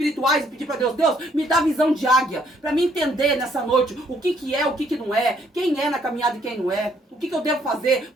e pedir para Deus, Deus, me dá visão de águia, para me entender nessa noite o que é, o que não é, quem é na caminhada e quem não é, o que eu devo fazer,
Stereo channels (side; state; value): both; normal; correlation 0.68